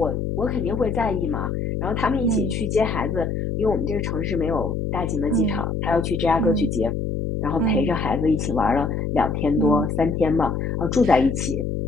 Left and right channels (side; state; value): left; noise; hum, 2 dB below the sound